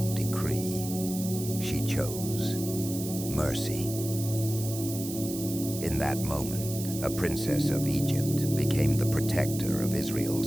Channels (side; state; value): right; noise; hiss, 9 dB below the sound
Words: decree, she chose mercy. In that moment, a princess of Egypt became the protector of